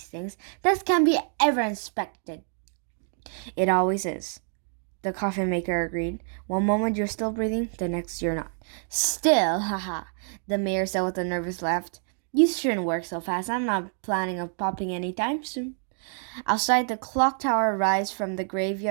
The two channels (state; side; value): silent; left; 60 dB below the other